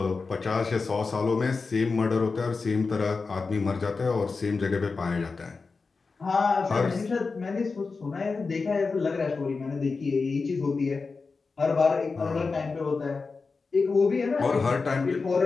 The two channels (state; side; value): quieter; right; 4.4 dB